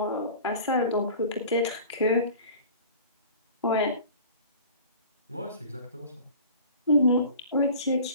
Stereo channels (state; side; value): inverted; both; correlation -0.42